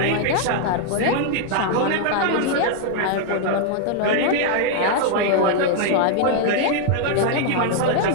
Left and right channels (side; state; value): both; different; correlation 0.00